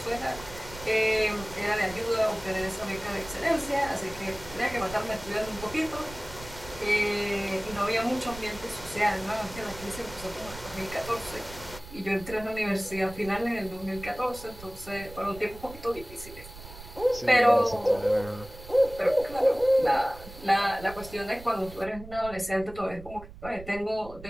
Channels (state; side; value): noise; right; rumble, 15 dB below the sound